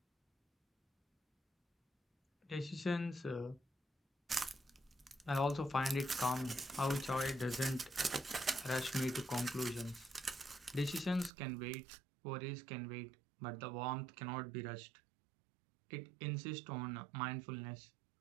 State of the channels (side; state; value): left; drops out; at 11.3 s